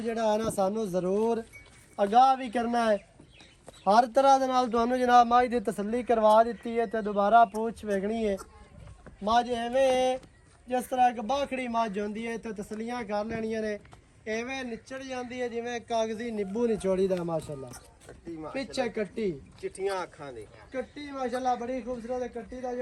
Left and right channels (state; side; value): identical; both; correlation 1.00